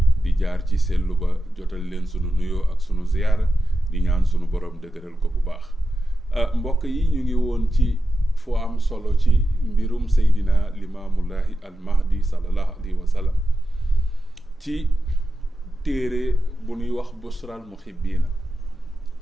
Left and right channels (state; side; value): normal; both; correlation 0.90